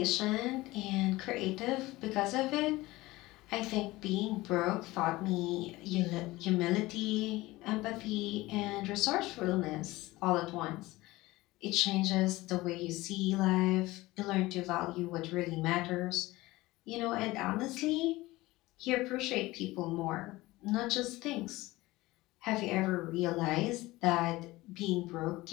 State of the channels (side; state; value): right; quieter; 19.4 dB